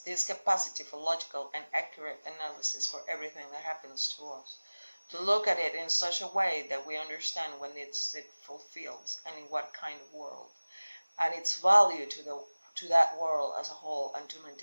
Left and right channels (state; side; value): inverted; both; correlation -1.00